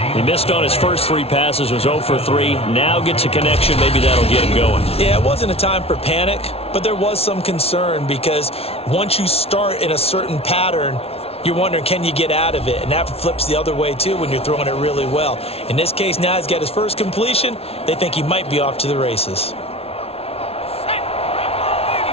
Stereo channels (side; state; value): right; late; 0.29 ms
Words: He missed on his first 3 passes, was 0 for 3. Now gets a connection. Maybe that'll get him going. Yeah, it wasn't a time for panic, but there was some concern because once you start in a certain pattern, you're wondering, can you get out of it? And that flips the other way, too, when you're throwing it really well. In this case, now he's got his first completion. They think he might be off to the races.